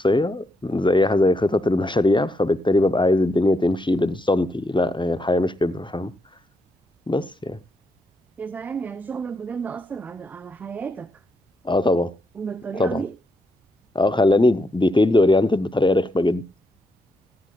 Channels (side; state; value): both; normal; correlation 0.79